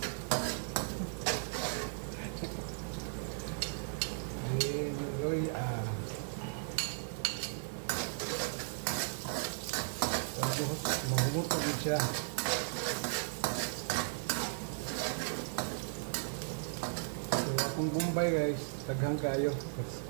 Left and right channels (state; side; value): silent; left; digital silence